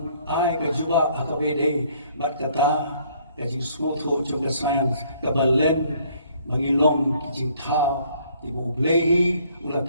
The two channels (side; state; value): both; inverted; correlation -0.62